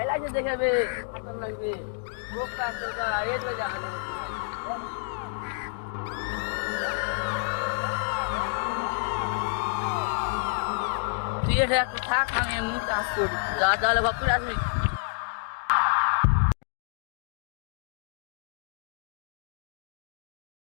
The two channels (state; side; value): silent; right; digital silence